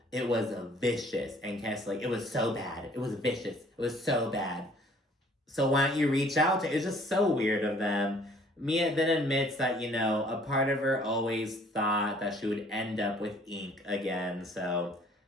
It was vicious. And Candiace's like, it was so bad. It was vicious. It was so bad. So why don't you reach out to? It's just so weird of them. Mia then admits that, a part of her always thought that she would end up with ink again. So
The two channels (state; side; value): normal; both; correlation 0.57